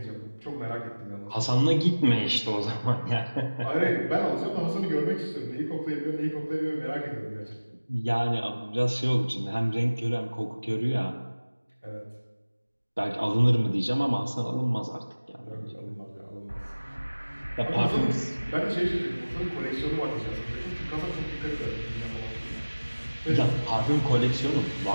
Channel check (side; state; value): both; inverted; correlation -1.00